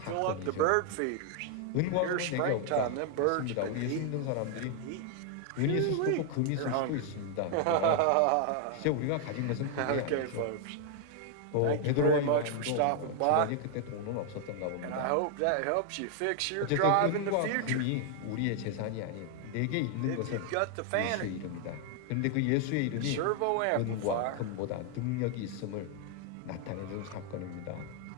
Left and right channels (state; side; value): different; both; correlation 0.00